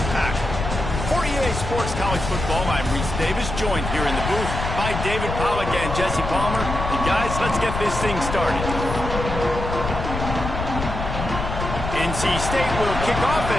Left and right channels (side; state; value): left; noise; rumble, 5 dB below the sound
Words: For EA Sports College Football, I'm Reese Davis, joined here in the booth by David Pollack and Jesse Palmer. And guys, let's get this thing started. NC State will kick off,